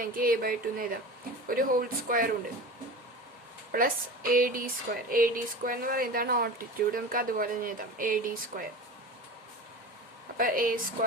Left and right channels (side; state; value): both; normal; correlation 0.32